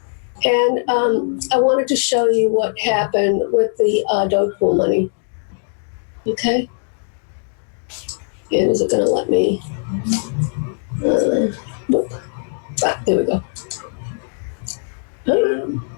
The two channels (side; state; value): right; silent; digital silence